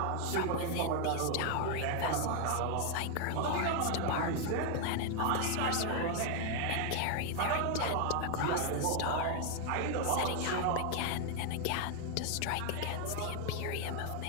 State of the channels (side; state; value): both; different; correlation 0.00